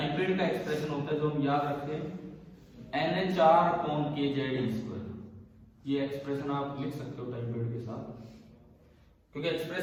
पीरियड का एक्सप्रेशन होता है जो हम याद रखें NH/kz²। ये एक्सप्रेशन आप लिख सकते हो टाइम पीरियड के साथ, क्योंकि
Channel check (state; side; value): identical; both; correlation 1.00